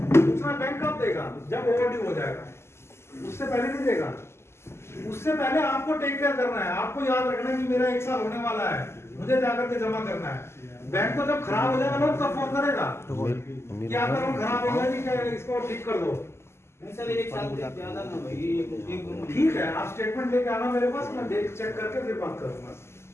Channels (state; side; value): late; right; 0.12 ms